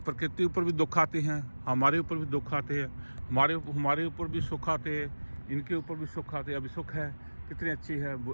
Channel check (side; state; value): both; inverted; correlation -1.00